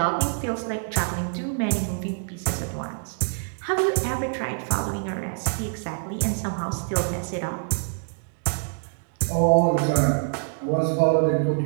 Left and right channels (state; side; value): silent; left; 62 dB below the other